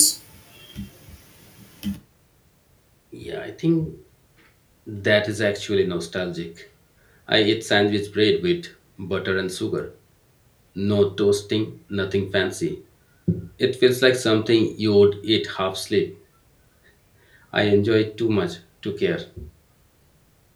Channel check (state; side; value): identical; both; correlation 1.00